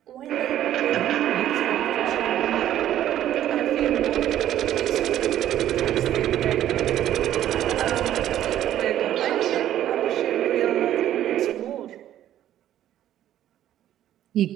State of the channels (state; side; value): quieter; left; 11.9 dB